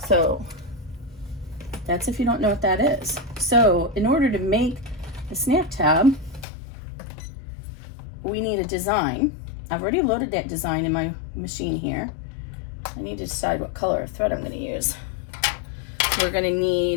So that's if you don't know what that is. So in order to make a snap tab, we need a design. I've already loaded that design in my machine here. I need to decide what color of thread I'm going to use. We're going to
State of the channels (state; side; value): drops out; right; at 6.5 s